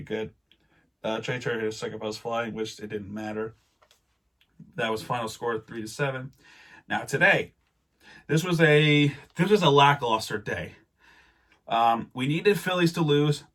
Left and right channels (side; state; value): both; identical; correlation 1.00